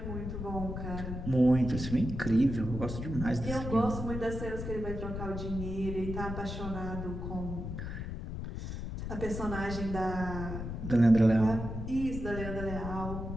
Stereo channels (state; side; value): noise; left; rumble, 6 dB below the sound